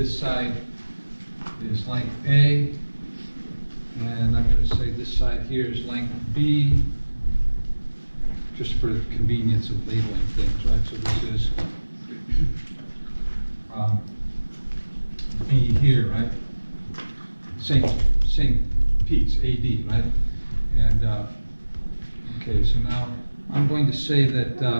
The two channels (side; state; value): both; inverted; correlation -1.00